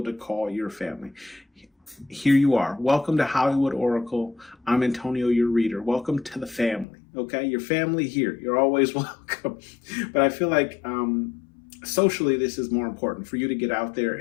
to call your family. Here you are. Welcome to Hollywood Oracle. I'm Antonio, your reader. Welcome to the family. Okay, your family here. You're always welcome. But I feel like socially, this is more important for you to get out there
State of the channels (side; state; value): right; drops out; at 6.9 s